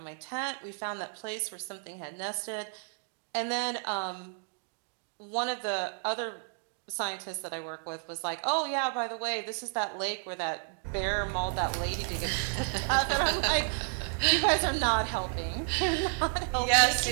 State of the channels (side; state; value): left; silent; 57 dB below the other